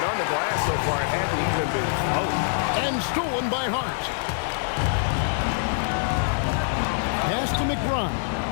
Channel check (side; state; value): right; silent; digital silence